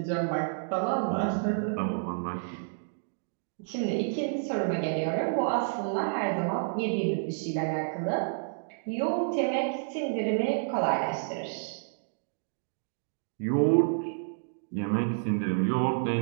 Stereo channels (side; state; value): left; silent; digital silence